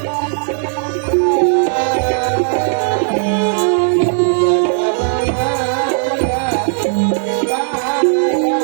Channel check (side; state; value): left; silent; 67 dB below the other